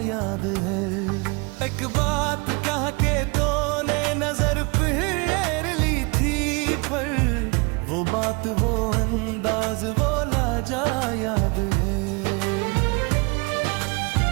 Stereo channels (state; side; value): quieter; left; 29.1 dB